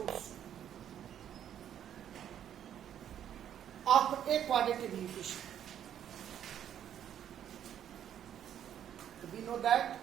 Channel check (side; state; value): left; quieter; 10.0 dB